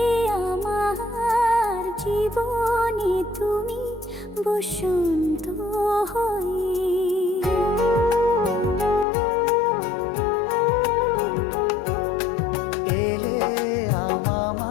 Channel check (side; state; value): right; drops out; at 9.1 s